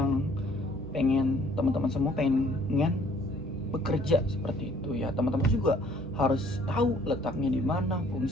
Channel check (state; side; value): normal; both; correlation 0.60